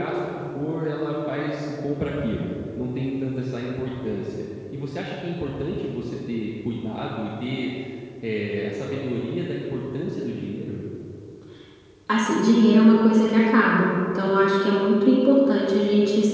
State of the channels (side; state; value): both; identical; correlation 1.00